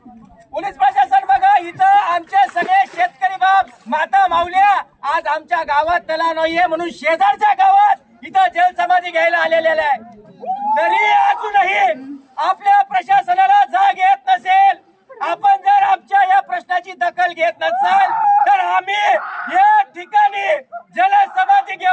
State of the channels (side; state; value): both; identical; correlation 1.00